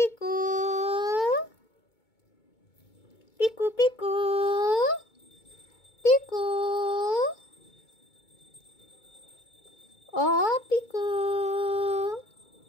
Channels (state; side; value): late; right; 2.2 ms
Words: পিকু পিকু পিকু, ও পিকু।